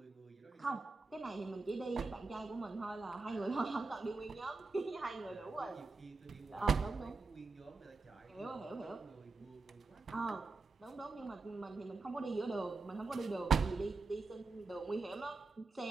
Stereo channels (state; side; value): quieter; left; 3.8 dB